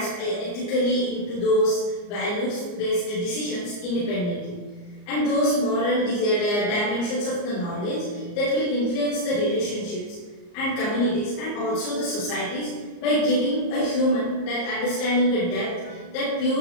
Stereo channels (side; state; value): right; late; 34 ms